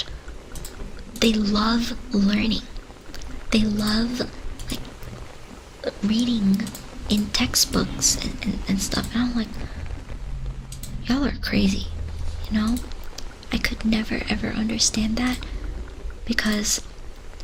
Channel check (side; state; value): both; identical; correlation 1.00